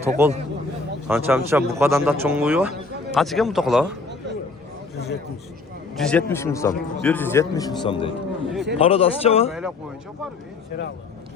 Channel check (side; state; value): right; quieter; 3.9 dB